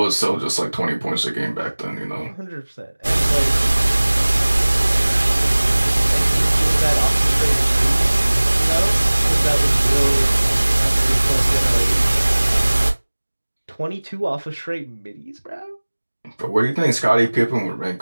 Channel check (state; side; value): inverted; both; correlation -1.00